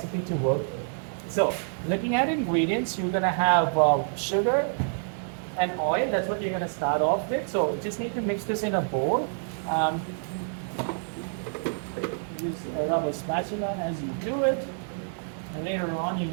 to work with. So, looking at ingredients, you're gonna have sugar and oil. That's what you're gonna start off with. So, you just need to mix this in a bowl. Use a rubber spatula as you do it. And later on, you're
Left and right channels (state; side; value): silent; left; digital silence